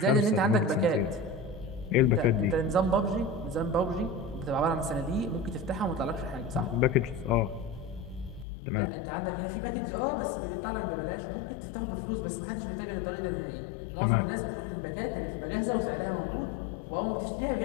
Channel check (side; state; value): right; drops out; at 8.5 s